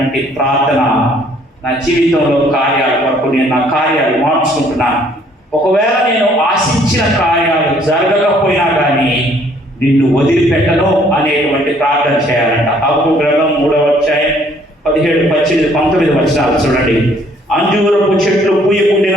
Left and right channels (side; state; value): both; normal; correlation 0.62